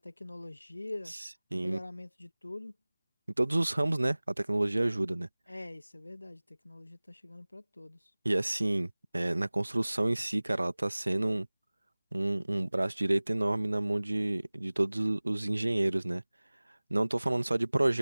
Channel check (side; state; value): both; inverted; correlation -1.00